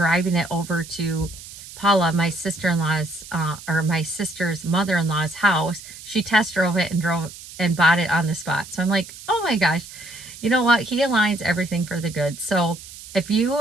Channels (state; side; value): noise; right; hiss, 16 dB below the sound